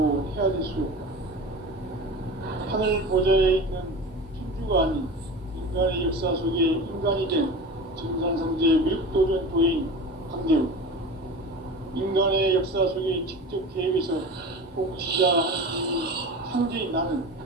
헤아릴 수 없다. 하늘 보좌에 있는 천주가 아닌 인간의 역사 속에 인간이 된 증산상제 미륵도전 도인 강대우. 인간의 역사 속에 직접 계획해서 통치자 하나님이 상제인 나는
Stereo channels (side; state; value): both; normal; correlation 0.32